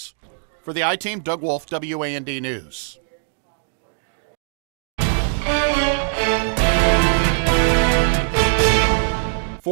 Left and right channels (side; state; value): left; silent; digital silence